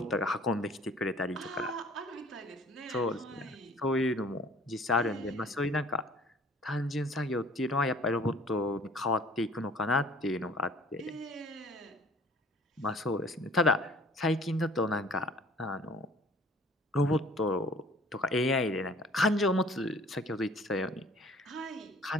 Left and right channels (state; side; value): normal; both; correlation 0.52